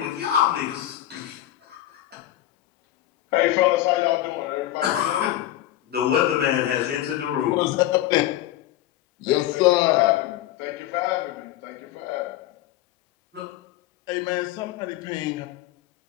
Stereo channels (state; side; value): quieter; right; 13.9 dB